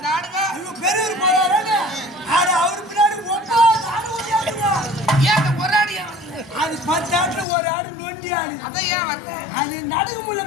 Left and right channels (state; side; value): drops out; right; at 7.5 s